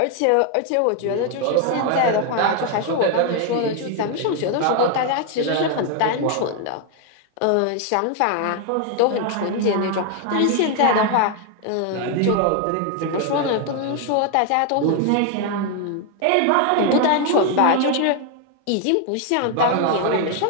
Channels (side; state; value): both; different; correlation 0.00